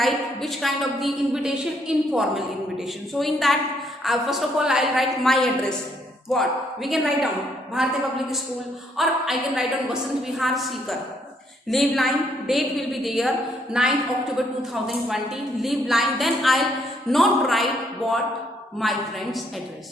which kind of the invitation? Informal invitation. So in that, first of all, I'll write my address. What? We can write down Bharati Public School, or I can write down Vasant Vihar, Sikar. Leave line, date will be there, 9th October 2020. Leave line, then I'll not write what? My friend's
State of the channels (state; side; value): normal; both; correlation 0.71